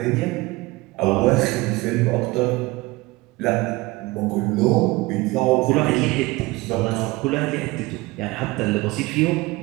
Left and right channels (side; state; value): left; quieter; 21.7 dB